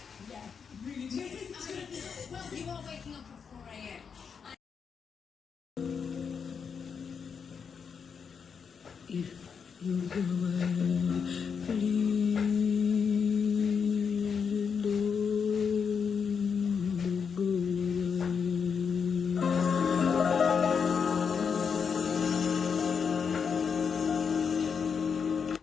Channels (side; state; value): right; quieter; 6.4 dB